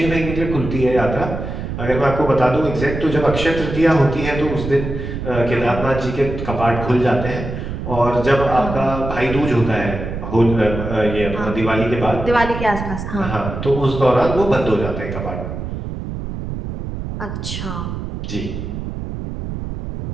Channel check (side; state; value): right; noise; rumble, 6 dB below the sound